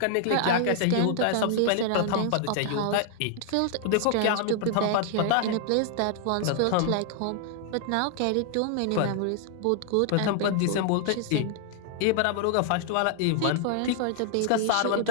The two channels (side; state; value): both; different; correlation 0.00